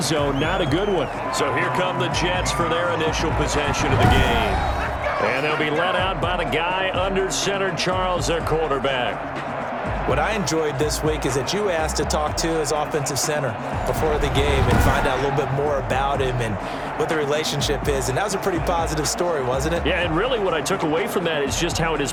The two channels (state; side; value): identical; both; correlation 1.00